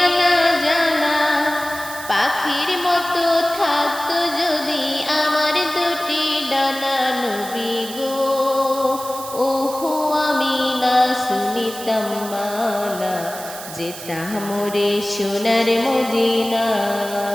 না জানা, পাখির মতো থাকতো যদি আমার দুটি ডানা। নবী গো, ওহো আমি না শুনিতাম মানা, যেতাম মোরে সোনার মদিনা।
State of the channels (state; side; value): noise; right; hiss, 12 dB below the sound